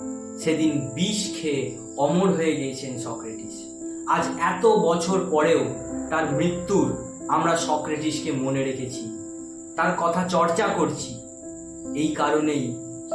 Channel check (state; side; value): identical; both; correlation 1.00